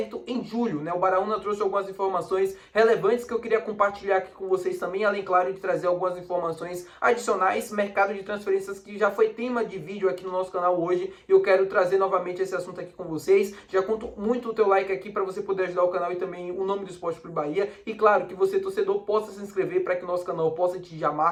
em julho, né? O Baraúna trouxe algumas informações relevantes que eu queria compartilhar aqui com vocês também, além, claro, de trazer algumas informações adicionais, mercado de transferências que já foi tema de vídeo aqui no nosso canal hoje, e eu quero trazer novamente esse assunto aqui com vocês. Já conto muito o teu like aqui para você poder ajudar o canal e também o nome do Esporte Clube Bahia, e claro, que você, torcedor, possa se inscrever para que o nosso canal possa atingir a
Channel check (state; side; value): identical; both; correlation 1.00